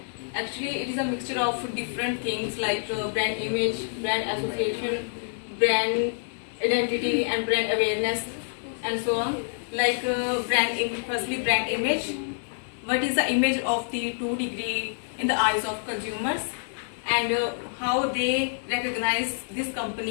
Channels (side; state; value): right; silent; 60 dB below the other